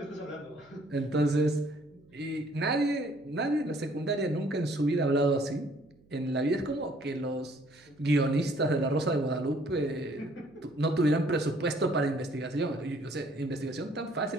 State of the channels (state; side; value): noise; right; hum, 30 dB below the sound